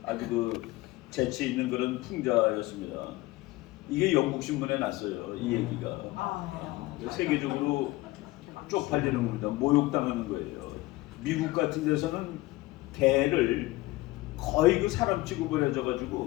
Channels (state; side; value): quieter; right; 19.4 dB